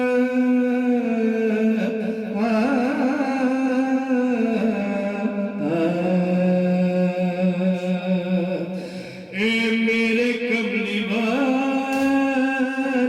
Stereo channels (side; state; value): both; identical; correlation 1.00